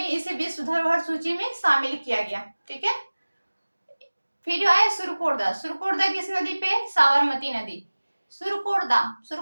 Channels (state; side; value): inverted; both; correlation -1.00